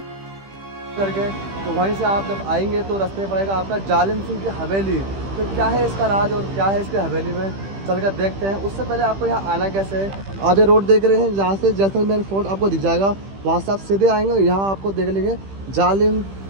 करके। तो वहीं से आप जब आएंगे तो रास्ते में पड़ेगा आपका जालिम सिंह की हवेली। तो क्या है इसका राज और क्या है इसकी हवेली में, चलकर देखते हैं। उससे पहले आपको यहाँ आना कैसे है। आप ये रोड देख रहे हैं, जहाँ से जैसलमेर फोर्ट आपको दिख जाएगा, वहाँ से आप सीधे आएंगे। यहाँ आपको देख लेंगे जालिम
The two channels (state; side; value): late; left; 15 ms